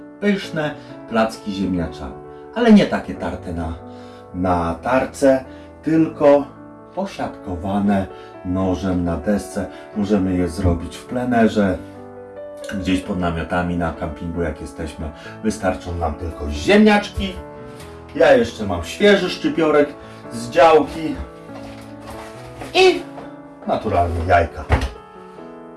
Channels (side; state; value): both; identical; correlation 1.00